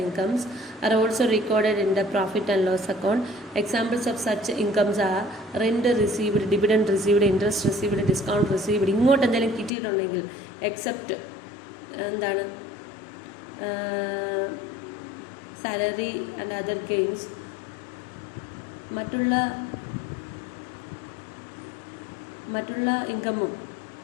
incomes are also recorded in the profit and loss account. Examples of such incomes are rent received, dividend received, interest received, discount received. ഇങ്ങോട്ട് എന്തെങ്കിലും കിട്ടിയിട്ടുണ്ടെങ്കിൽ except എന്താണ് salary and other gains, മറ്റുള്ള ഇൻകമും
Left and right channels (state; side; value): drops out; right; at 9.7 s